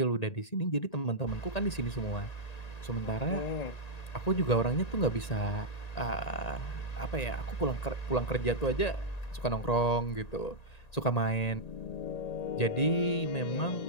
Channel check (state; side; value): late; right; 1.9 ms